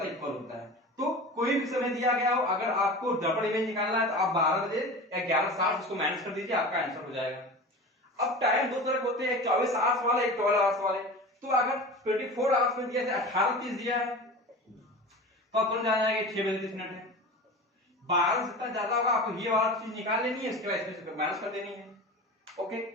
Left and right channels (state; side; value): normal; both; correlation 0.33